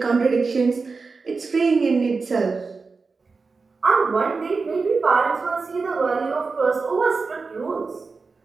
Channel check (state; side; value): quieter; left; 4.4 dB